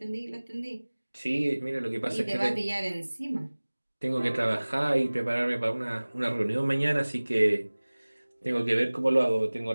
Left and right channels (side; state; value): both; inverted; correlation -1.00